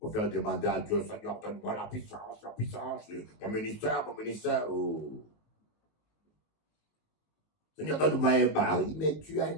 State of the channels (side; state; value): right; late; 19 ms